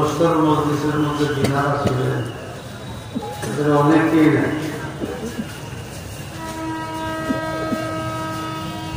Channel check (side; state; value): both; identical; correlation 1.00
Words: মজলিসের মধ্যে যিনারা ছিলেন এদের অনেকেই নেই।